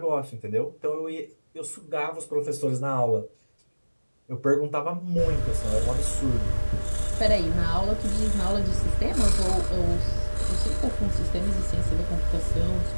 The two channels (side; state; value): both; inverted; correlation -1.00